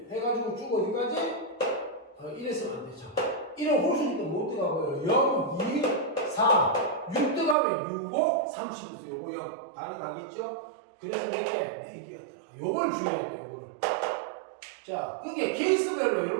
해가지고 쭉 어디까지? 1에서는 안 되죠. 1은 홀수니까 못 들어가고요. 0, 2, 4, 6 들어가면 6, 5, 30에서 요거 0 가능하겠죠? 그래서 4개가 들어가. 요걸 주의해야 돼요. 요거를. 자, 그게 케이스별로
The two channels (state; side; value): drops out; left; at 7.6 s